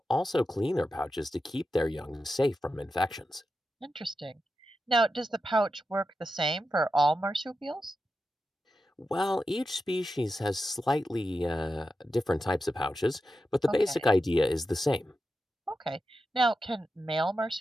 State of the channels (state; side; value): normal; both; correlation 0.90